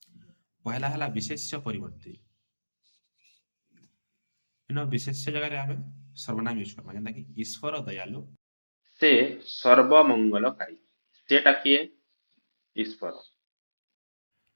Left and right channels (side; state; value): both; inverted; correlation -1.00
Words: ପहला ହେଲା ବିଶେଷ୍ୟ ପରିବର୍ତ୍ତେ। ବିଶେଷ୍ୟ ଜାଗାରେ ଆମେ ସର୍ବନାମ ୟୁଜ କରମା। ଯେନ୍ତା କି ଈଶ୍ୱର ଦୟାଳୁ, ସେ ସର୍ବମଙ୍ଗଳକାରୀ। ସେଟା କିଏ? ଈଶ୍ୱର।